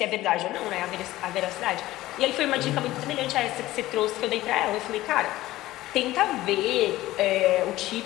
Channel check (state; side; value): quieter; right; 16.5 dB